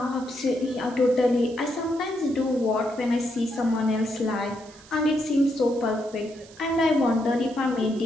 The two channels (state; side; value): noise; right; hiss, 23 dB below the sound